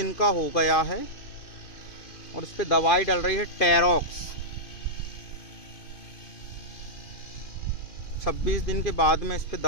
का हो गया है और इस पे दवाई डल रही है टेरॉक्स। 26 दिन के बाद में इस पे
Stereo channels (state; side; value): late; right; 2.5 ms